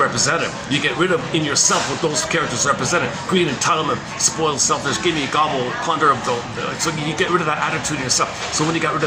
You get rid of in yourself what those characters represented: greed, entitlement, spoiled, selfish, give me, gobble, plunder. So you get rid of that attitude in yourself. So when you got rid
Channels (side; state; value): both; identical; correlation 1.00